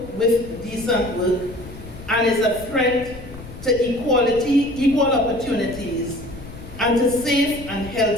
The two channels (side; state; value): left; noise; rumble, 14 dB below the sound